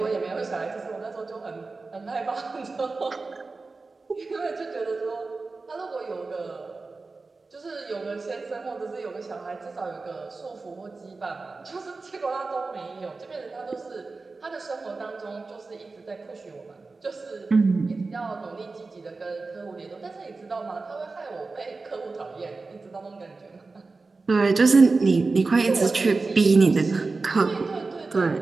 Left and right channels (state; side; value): quieter; left; 3.8 dB